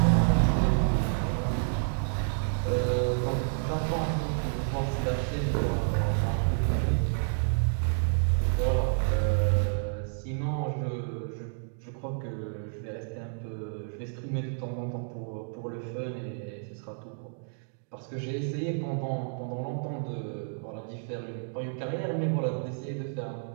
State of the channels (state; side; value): silent; left; digital silence